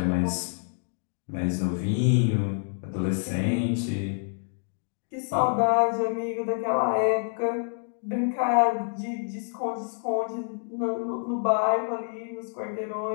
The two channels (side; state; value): right; silent; digital silence